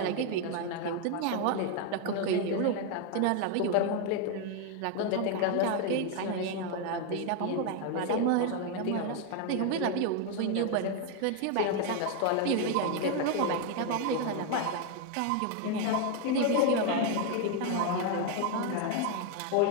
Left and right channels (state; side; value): different; both; correlation 0.01